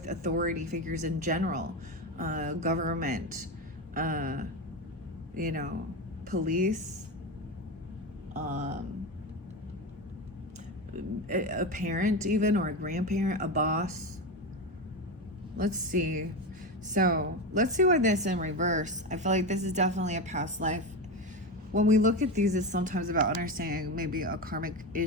authority figures in general, government, you know, police, a parent even, or a grandparent, a boss. Let's see. So let's see why this in reverse. I feel like this is definitely a past life. When we look at these, it's sometimes about understanding maybe a karmic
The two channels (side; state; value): both; normal; correlation 0.18